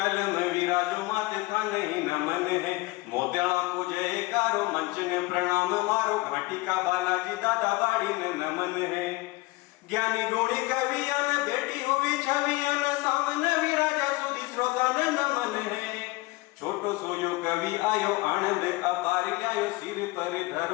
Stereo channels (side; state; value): right; quieter; 21.4 dB